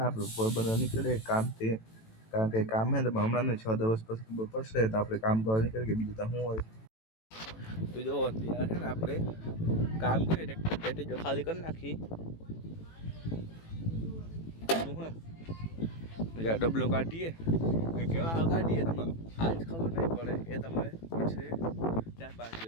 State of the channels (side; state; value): right; late; 18 ms